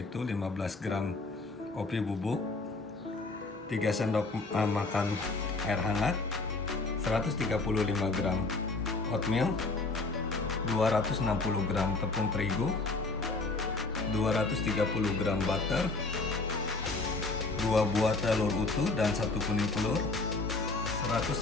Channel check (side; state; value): right; quieter; 3.5 dB